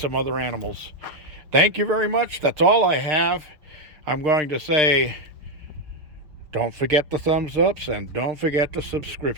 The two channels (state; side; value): late; left; 6.6 ms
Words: other animals. Thank you very much. That's all I have. I'm going to say, don't forget the thumbs ups and don't forget the